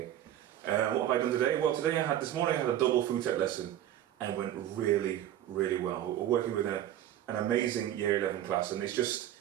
What have I done today? Well, this morning I had a double food tech lesson and it went really well. We're working with an amazing year 11 class, and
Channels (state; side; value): quieter; left; 11.9 dB